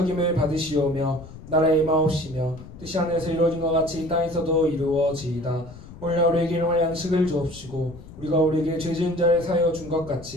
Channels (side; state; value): left; noise; rumble, 16 dB below the sound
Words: 받으시오며 나라의 임하옵시며 뜻이 하늘에서 이루어진 것 같이 이 땅에서도 이루어지이다. 오늘 우리에게 일용할 양식을 주옵시고 우리가 우리에게 죄 지은 자를 사하여 준 것